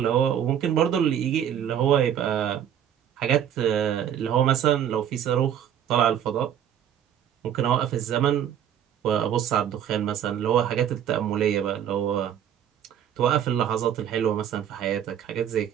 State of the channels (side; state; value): left; quieter; 9.7 dB